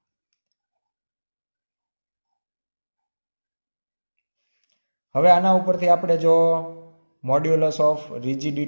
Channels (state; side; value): inverted; both; correlation -1.00